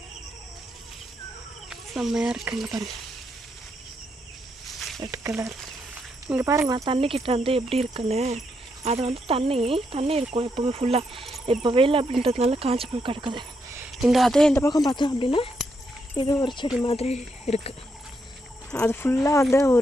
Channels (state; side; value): normal; both; correlation 0.79